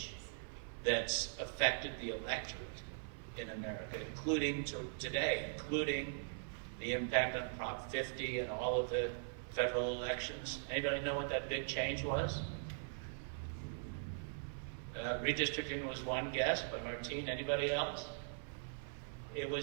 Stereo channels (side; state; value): left; silent; 50 dB below the other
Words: that's affected the electorate in America, including today, including the impact on Prop 50 and all of the federal elections? Anybody know what that big change was? Redistricting was one guess, but Martine, anybody else? It